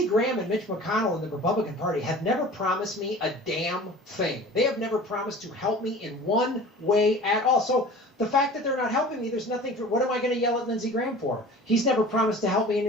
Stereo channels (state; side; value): normal; both; correlation 0.41